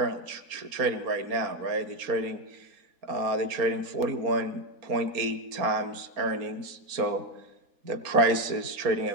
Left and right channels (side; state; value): left; late; 4.3 ms